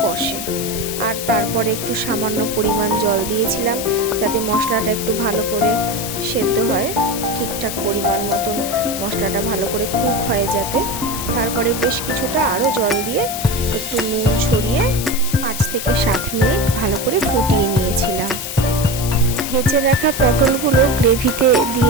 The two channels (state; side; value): noise; left; hiss, 6 dB below the sound